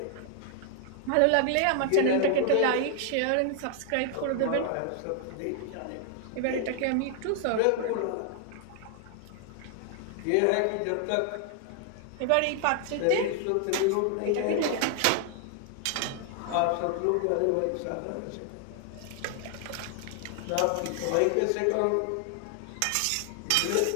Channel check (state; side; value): different; both; correlation 0.00